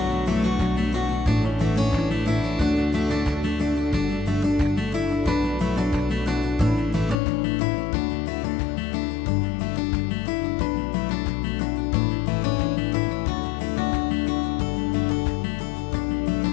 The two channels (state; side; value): drops out; right; at 7.2 s